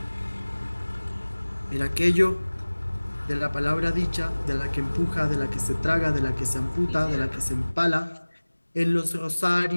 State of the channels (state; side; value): inverted; both; correlation -1.00